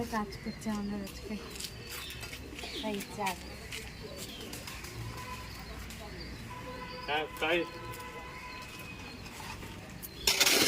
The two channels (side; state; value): both; identical; correlation 1.00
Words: কাজ করছে আমাদের আজকে তাই চার